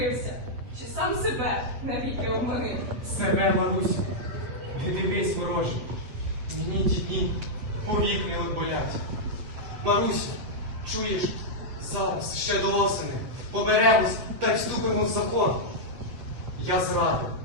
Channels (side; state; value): left; late; 7.9 ms